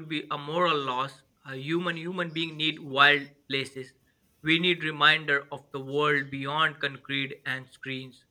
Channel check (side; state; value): both; identical; correlation 1.00